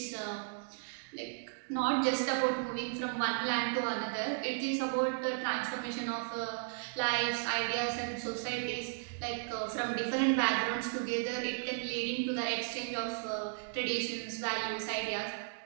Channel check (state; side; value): silent; left; digital silence